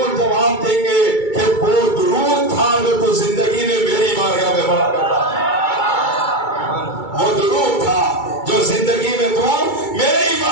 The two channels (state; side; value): late; right; 2.3 ms